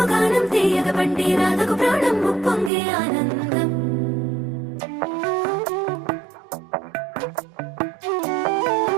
గానం తీయగ పండి రాధకు ప్రాణం ముప్పొంగే ఆనందం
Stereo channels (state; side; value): drops out; left; at 2.7 s